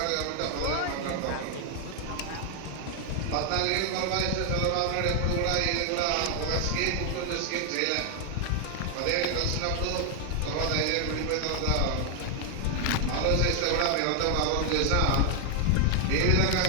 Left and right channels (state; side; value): different; both; correlation 0.00